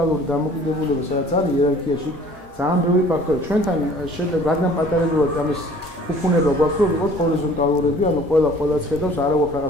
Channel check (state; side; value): normal; both; correlation 0.51